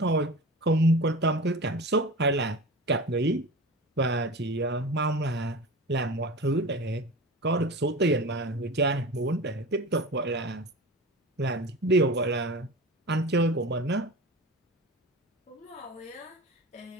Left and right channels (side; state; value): both; normal; correlation 0.32